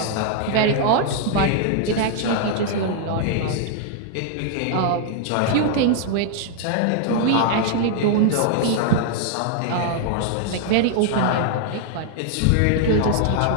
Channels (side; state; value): both; different; correlation 0.00